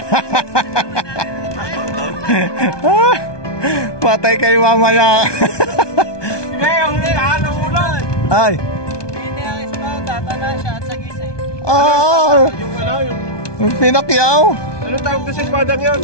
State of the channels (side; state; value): right; late; 1.2 ms